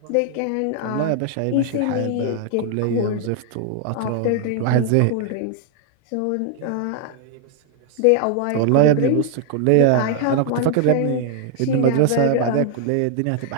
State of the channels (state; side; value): different; both; correlation 0.00